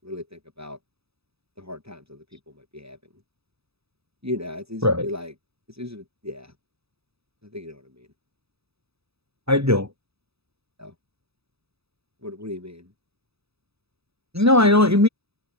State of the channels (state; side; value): late; left; 0.78 ms